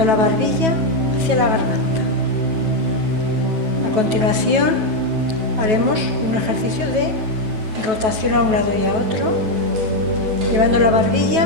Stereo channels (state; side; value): late; left; 9.3 ms